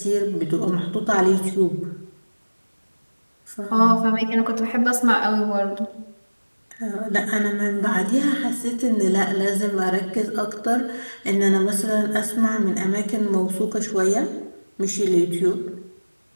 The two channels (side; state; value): both; inverted; correlation -1.00